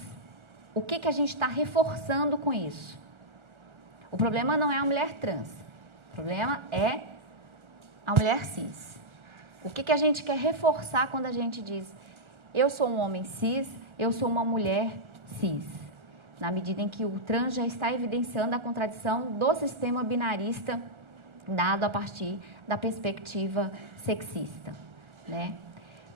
O que a gente está reforçando com isso? O problema não é a mulher trans, o problema é a mulher cis. O que a gente quer reforçar quando a gente diz eu sou um homem cis, eu sou uma mulher cis? Na medida em que o trans já está evidenciando a contradição do sistema binarista dado a partir da perspectiva sexista, né?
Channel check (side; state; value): left; late; 1.4 ms